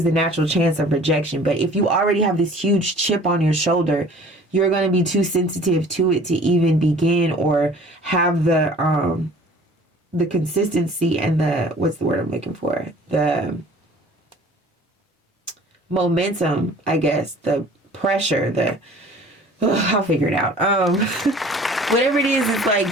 the natural chance of rejection. But if you already have this huge chip on your shoulder, you're going to be too sensitive to it to even begin or have the consistency and the, what's the word I'm looking for, the momentum, I guess, the pressure, I'll figure it out. Whatever it is, it's like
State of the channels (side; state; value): both; normal; correlation 0.49